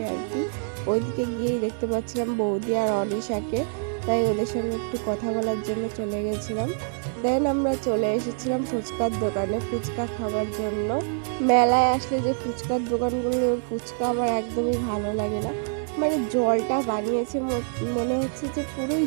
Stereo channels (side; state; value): left; silent; 61 dB below the other